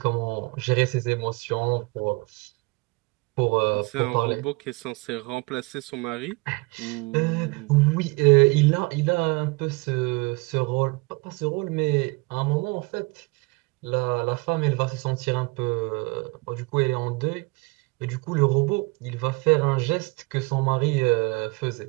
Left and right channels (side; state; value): left; quieter; 26.5 dB